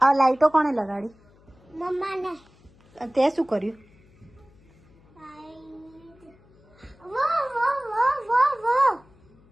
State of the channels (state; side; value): noise; left; hum, 29 dB below the sound